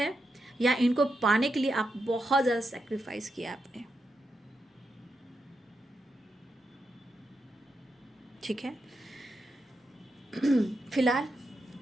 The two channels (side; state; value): both; normal; correlation 0.85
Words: या इनको पाने के लिए आप बहुत ज़्यादा सेक्रीफाइस किया आपने, ठीक है। फिलहाल